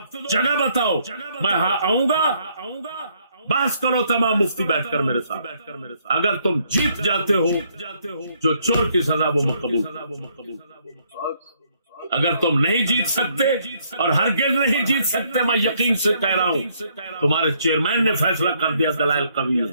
جگہ بتاؤ، میں آؤں گا، بحث کرو تمام مفتی بیٹھ کر میرے ساتھ۔ اگر تم جیت جاتے ہو جو چور کی سزا وہ مقبول، اگر تم نہیں جیت سکتے اور ہرگز نہیں جیت سکتے، میں یقین سے کہہ رہا ہوں تمہارے چیئرمین نے فیصلہ کر دیا، دلائل قوی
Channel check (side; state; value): both; inverted; correlation -0.69